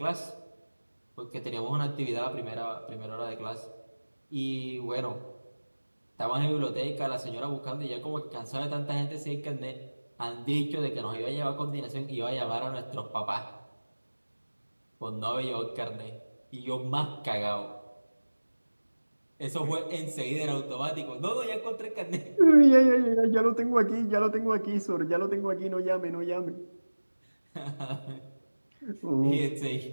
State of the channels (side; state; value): both; inverted; correlation -1.00